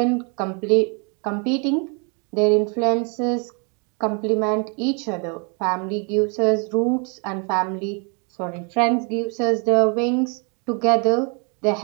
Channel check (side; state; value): left; quieter; 35.8 dB